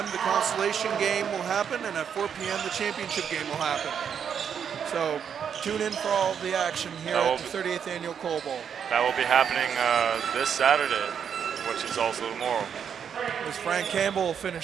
the consolation game will happen. And at 4 p.m., the championship game will happen. So tune in for all the action here at the 38th Annual Coal Bowl. That will be happening this Saturday, which is also tomorrow. As Frank Campbell will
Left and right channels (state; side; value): quieter; left; 7.7 dB